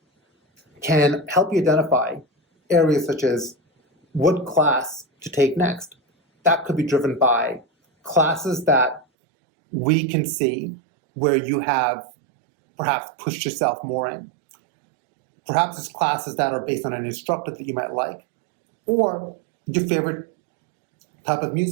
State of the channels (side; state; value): left; drops out; at 9.1 s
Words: can help you identify areas such as what class to take next. That could be driven by classes that we can see where you have perhaps pushed yourself more in. Perhaps it's classes that are based on an instructor that you might like, or your favorite type of